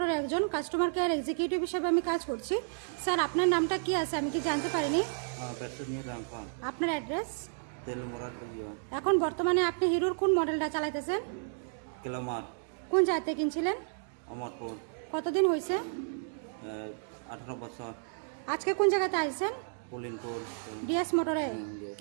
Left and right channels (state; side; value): silent; left; digital silence